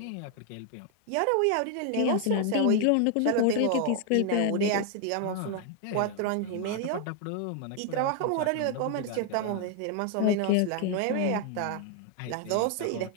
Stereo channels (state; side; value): different; both; correlation 0.00